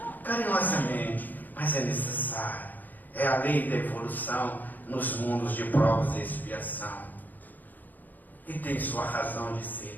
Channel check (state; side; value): late; right; 0.085 ms